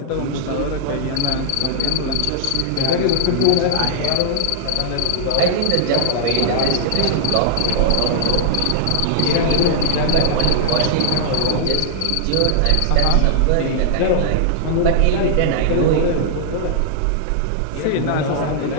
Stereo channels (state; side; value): different; both; correlation -0.01